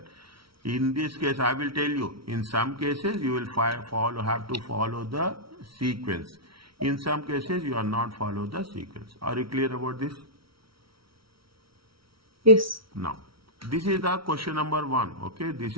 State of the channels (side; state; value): left; late; 0.75 ms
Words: In this case, I will tell you, in some cases, you will have to follow the sequence. In some cases, you are not follow the sequence. Are you clear about this? Yes. Now, this is the question number 1. Okay, this